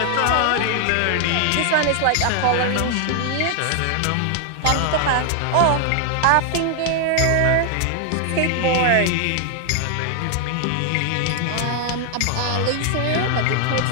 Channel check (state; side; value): different; both; correlation 0.00